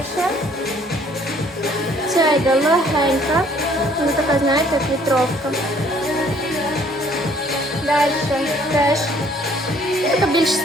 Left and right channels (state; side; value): normal; both; correlation 0.60